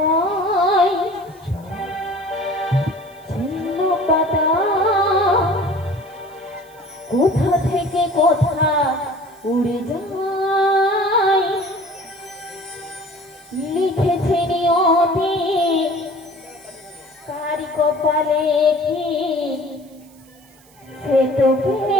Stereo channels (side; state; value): right; noise; hiss, 28 dB below the sound